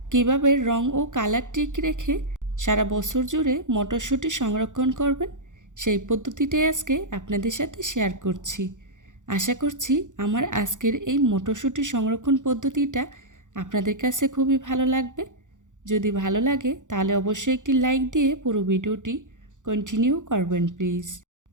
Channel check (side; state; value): left; late; 0.86 ms